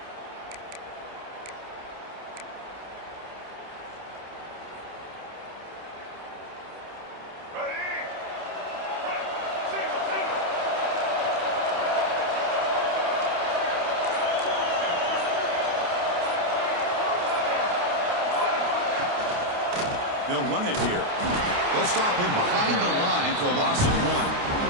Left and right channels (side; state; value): left; late; 28 ms